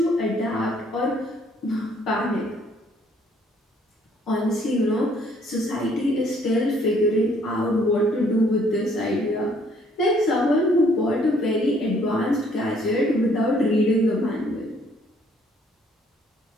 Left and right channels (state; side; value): normal; both; correlation 0.63